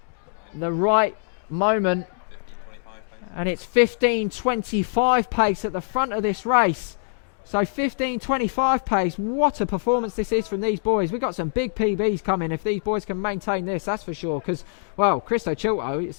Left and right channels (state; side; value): silent; right; digital silence